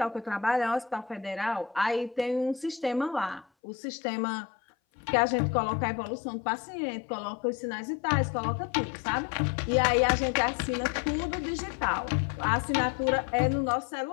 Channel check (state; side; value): drops out; right; at 3.5 s